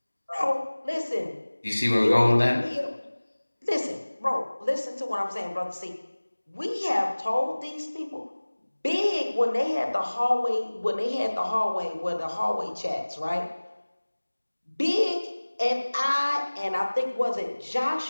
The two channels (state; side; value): inverted; both; correlation -1.00